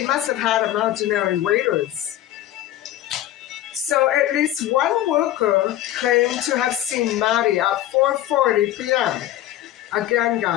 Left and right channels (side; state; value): right; quieter; 13.3 dB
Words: must have had imaginary waiters. So at least one worker claimed to have seen Maddie at 4:40 p.m. Again,